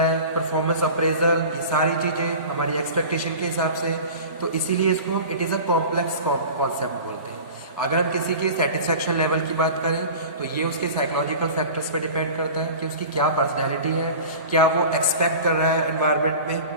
है, परफॉर्मेंस अप्रेजल, ये सारी चीज़ें हमारी एक्सपेक्टेशन के हिसाब से. तो इसीलिए इसको हम it is a complex concept बोलते हैं. अगर हम किसी के सेटिस्फेक्शन लेवल की बात करें तो ये उसके साइकोलॉजिकल फैक्टर्स पे डिपेंड करता है कि उसकी क्या पर्सनैलिटी है, क्या वो एक्सपेक्ट कर रहा है एनवायरनमेंट में,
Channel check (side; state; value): both; inverted; correlation -0.37